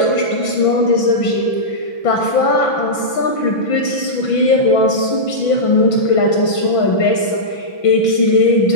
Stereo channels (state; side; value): late; right; 6.0 ms